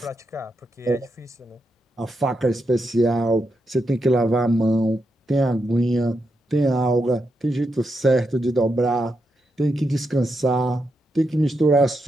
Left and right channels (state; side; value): normal; both; correlation 0.84